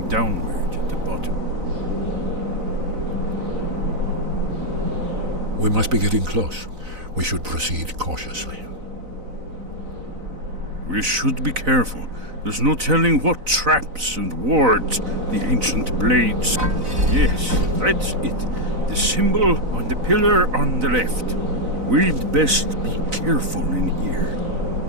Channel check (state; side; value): late; left; 4.0 ms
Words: downward at the bottom. We must be getting close. We should proceed cautiously. We should be careful. There's no telling what traps and wards the ancient blades. Yes, that's it. The symbol on the pillar on the left. We'd best be careful in here.